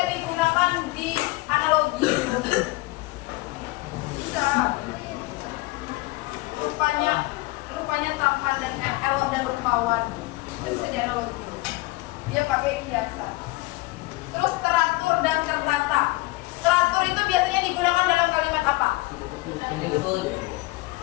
digunakan di analogi. Bisa. Rupanya tampan dan elok dan rupawan. Itu bisa di analogi. Dia pakai kiasan. Terus teratur dan tertata. Teratur itu biasanya digunakan dalam kalimat apa? Menyusun.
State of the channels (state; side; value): quieter; right; 21.6 dB